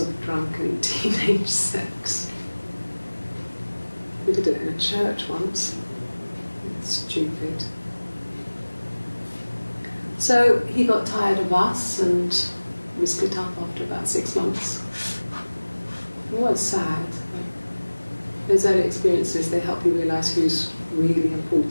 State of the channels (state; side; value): inverted; both; correlation -1.00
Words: drunken teenage sex. We did it in a church once. Stupid. So he got tired of us and we split up after about 6 months. It was sad. Those early experiences, they help you realise who's really